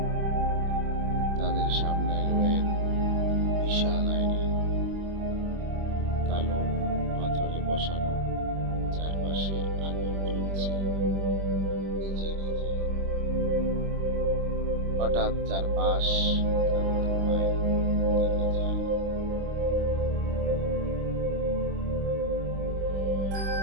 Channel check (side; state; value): left; late; 25 ms